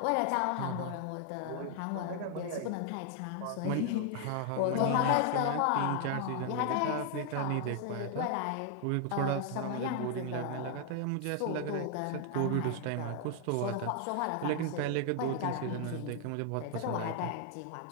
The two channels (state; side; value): different; both; correlation 0.00